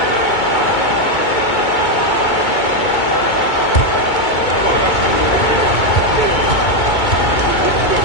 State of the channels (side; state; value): right; late; 2.2 ms